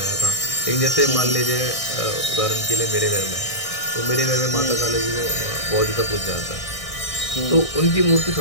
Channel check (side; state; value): right; late; 1.6 ms